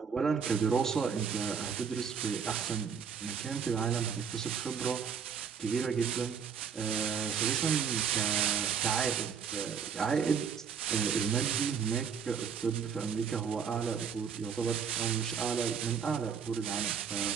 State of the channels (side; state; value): left; quieter; 6.8 dB